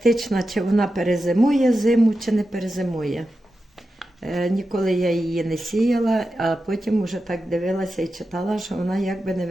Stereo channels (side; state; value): both; normal; correlation 0.91